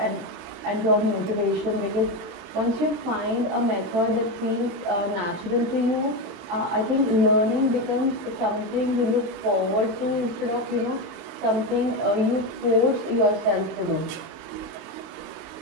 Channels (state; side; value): late; left; 23 ms